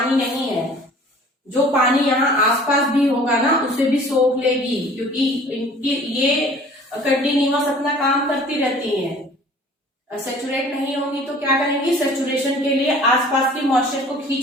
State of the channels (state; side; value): normal; both; correlation 0.49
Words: नहीं है। जो पानी यहाँ आसपास भी होगा ना उसे भी सोख लेगी, क्योंकि इनकी ये कंटिन्यूअस अपना काम करती रहती हैं। सेचुरेट नहीं होंगी तो क्या करेंगी, सेचुरेशन के लिए आसपास की मॉइस्चर को